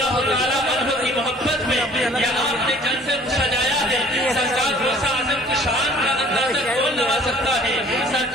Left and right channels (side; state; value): both; normal; correlation 0.53